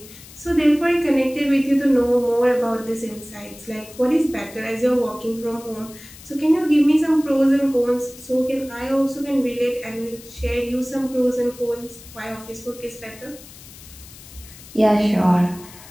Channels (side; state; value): left; noise; hiss, 19 dB below the sound